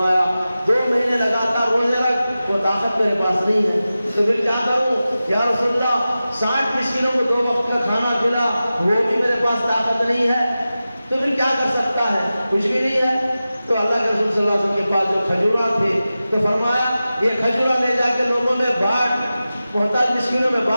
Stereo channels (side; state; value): both; inverted; correlation -0.94